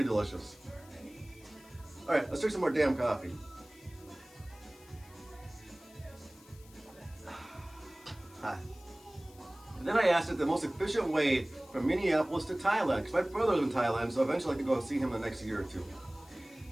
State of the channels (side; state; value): left; noise; hiss, 24 dB below the sound